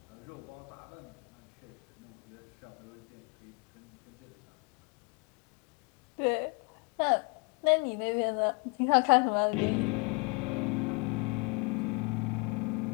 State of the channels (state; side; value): quieter; right; 32.7 dB